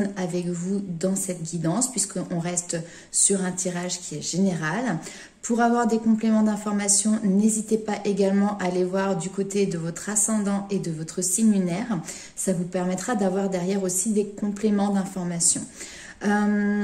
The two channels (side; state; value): both; identical; correlation 1.00